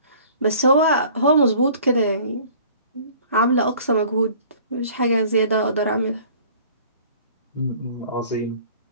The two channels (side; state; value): both; inverted; correlation -0.50